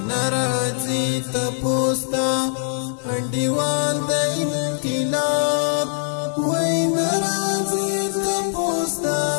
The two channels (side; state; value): right; silent; digital silence